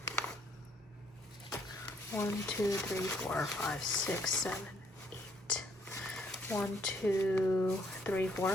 1, 2, 3, 4, 5, 6, 7, 8. 1, 2, 3, 4,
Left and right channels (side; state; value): both; normal; correlation 0.68